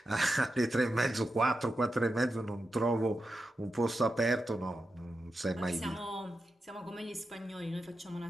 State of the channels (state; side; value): normal; both; correlation 0.89